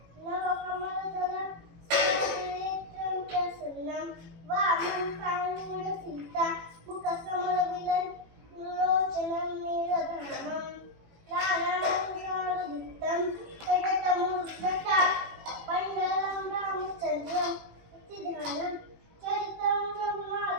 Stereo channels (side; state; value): left; late; 18 ms